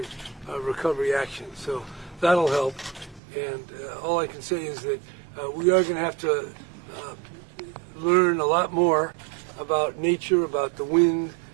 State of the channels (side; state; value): left; drops out; at 3.2 s